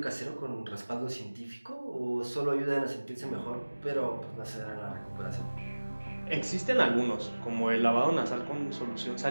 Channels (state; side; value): inverted; both; correlation -1.00